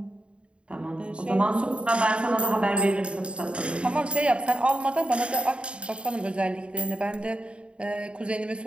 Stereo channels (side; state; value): left; late; 0.057 ms